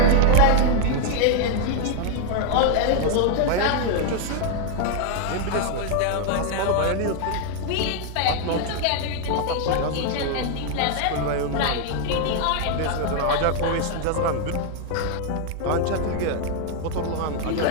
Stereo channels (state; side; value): different; both; correlation 0.00